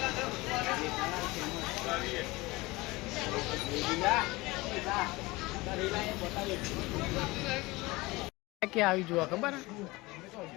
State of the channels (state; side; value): quieter; right; 21.9 dB